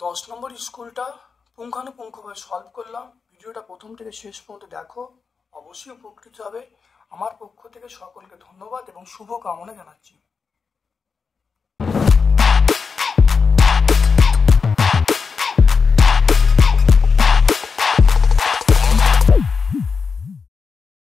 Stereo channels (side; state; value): right; quieter; 5.2 dB